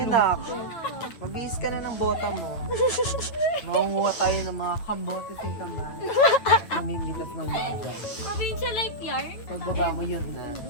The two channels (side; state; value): right; late; 9.1 ms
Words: na ako. Magbihis ka na ng bota mo. Makunguha tayo ng mga kambote sa kamay. Namimitas ng mga. Provincial life yarn? Pagbaba mo yun na.